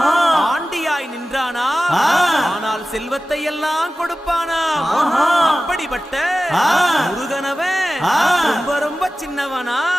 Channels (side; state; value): both; normal; correlation 0.95